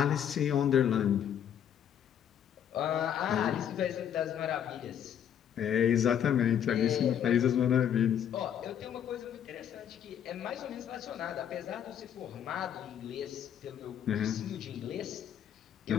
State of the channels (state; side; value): quieter; right; 9.3 dB